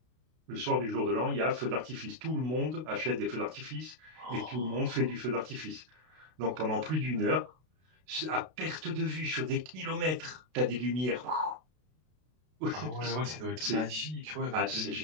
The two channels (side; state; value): left; late; 32 ms